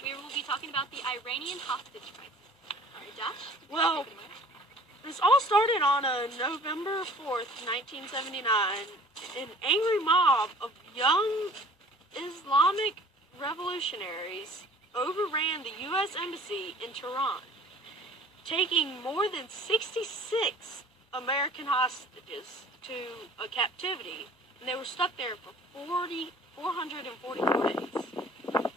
you. We will be talking about the Iranian hostage crisis. All right, Josh? Well, this all started on November 4th, 1979. An angry mob of young Islamic revolutionaries overran the U.S. Embassy in Tehran, taking more than 66 American hostages to a captivity, and they were stuck there for 444 days.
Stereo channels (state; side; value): normal; both; correlation 0.49